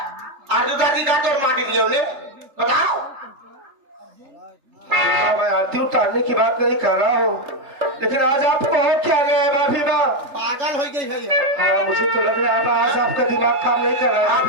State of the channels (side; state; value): left; late; 3.4 ms